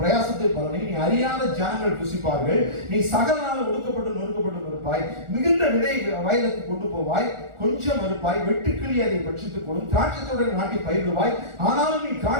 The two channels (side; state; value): left; late; 1.4 ms